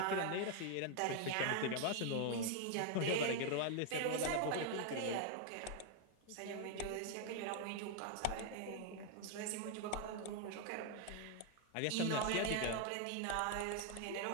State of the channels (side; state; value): both; different; correlation 0.00